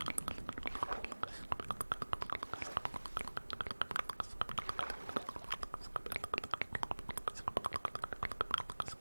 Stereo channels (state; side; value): inverted; both; correlation -1.00